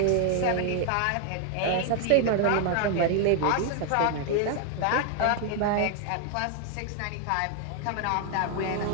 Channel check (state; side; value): different; both; correlation 0.00